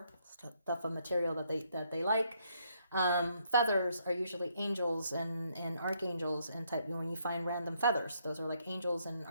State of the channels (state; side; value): inverted; both; correlation -0.72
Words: stuff of material that they like. Feathers are usually angels and archangels, and type, when you find random feathers, those are like angels and